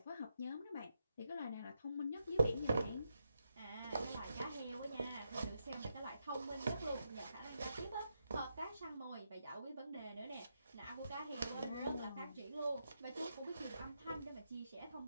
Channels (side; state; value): both; inverted; correlation -0.84